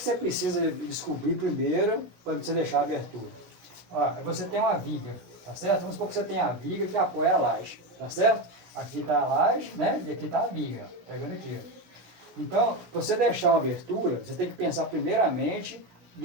precisa descobrir primeiro para você deixar a abertura? Ó, você tem uma viga, tá certo? Vamos supor que você tem a viga que apoia a laje, tá certo? Aqui está a laje, né? E aqui está a viga, ó, pegando aqui, ó. Então, para você deixar uma abertura, você tem que pensar primeiramente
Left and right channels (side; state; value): left; late; 17 ms